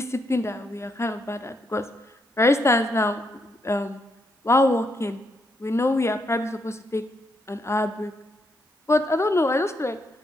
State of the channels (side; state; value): both; normal; correlation 0.78